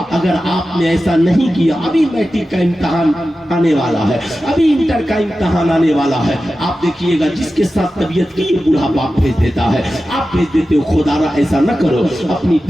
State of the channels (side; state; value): both; normal; correlation 0.93